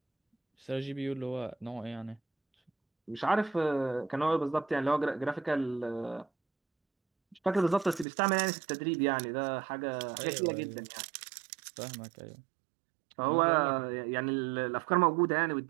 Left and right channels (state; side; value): drops out; left; at 8.1 s